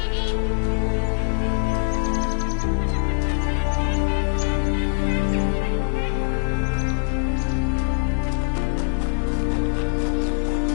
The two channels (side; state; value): right; silent; digital silence